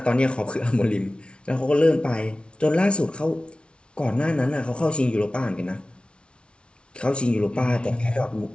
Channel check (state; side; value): late; right; 0.058 ms